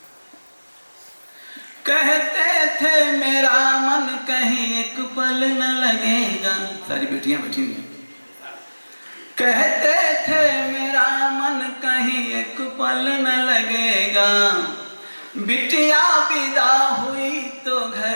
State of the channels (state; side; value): inverted; both; correlation -1.00